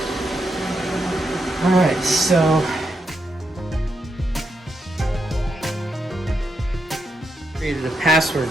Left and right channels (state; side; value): normal; both; correlation 0.82